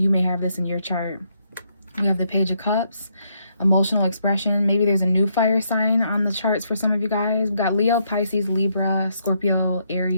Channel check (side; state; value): both; inverted; correlation -0.75